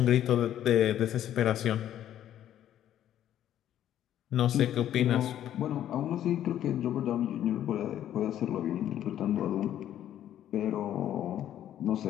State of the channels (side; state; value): right; quieter; 11.3 dB